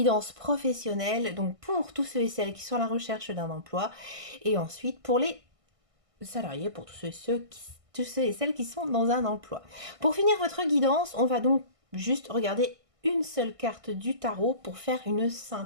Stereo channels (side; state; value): left; late; 1.6 ms